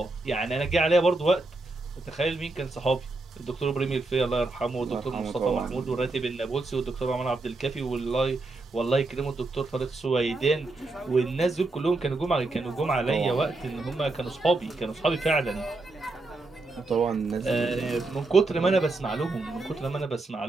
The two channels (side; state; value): left; quieter; 3.2 dB